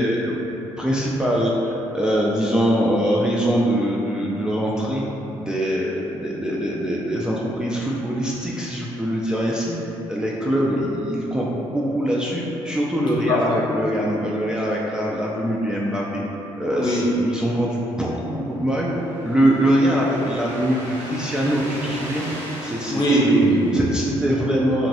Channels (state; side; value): normal; both; correlation 0.74